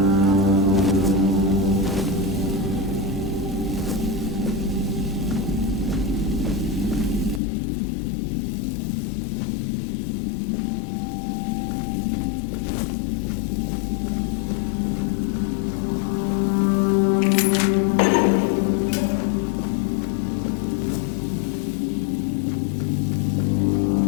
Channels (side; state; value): right; drops out; at 7.4 s